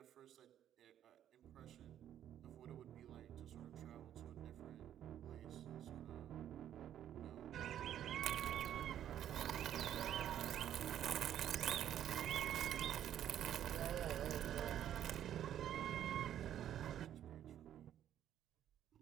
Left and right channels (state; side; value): quieter; left; 10.8 dB